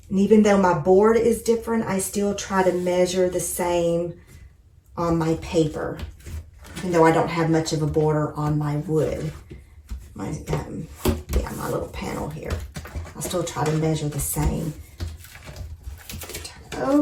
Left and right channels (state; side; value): identical; both; correlation 1.00